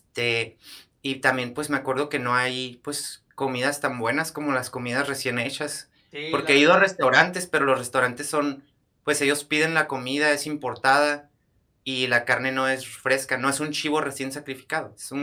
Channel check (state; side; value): identical; both; correlation 1.00